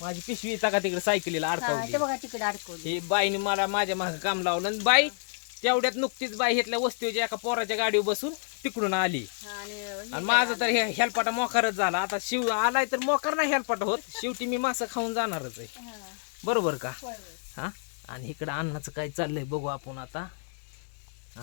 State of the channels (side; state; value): right; silent; 59 dB below the other